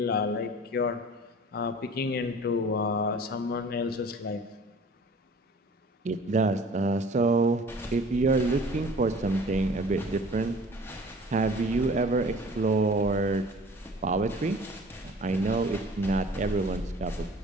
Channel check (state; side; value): normal; both; correlation 0.47